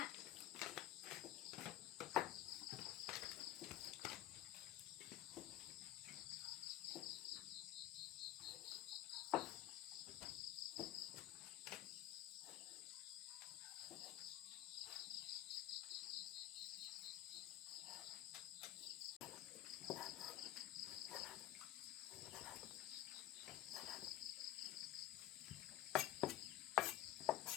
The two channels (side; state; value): right; quieter; 14.1 dB